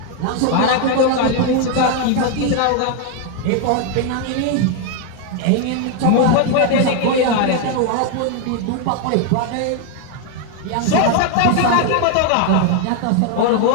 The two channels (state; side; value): different; both; correlation 0.01